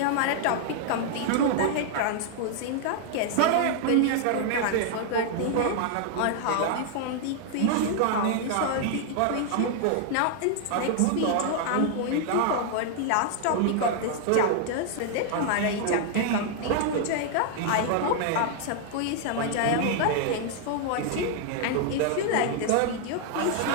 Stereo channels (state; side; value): different; both; correlation -0.01